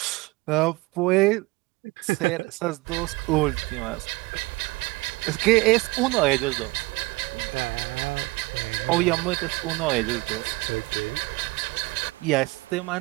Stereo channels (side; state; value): left; quieter; 22.9 dB